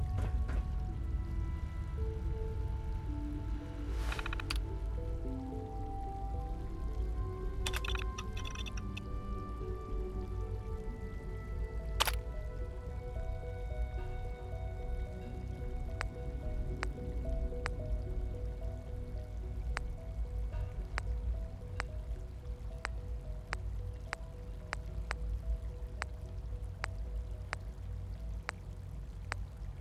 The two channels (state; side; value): identical; both; correlation 1.00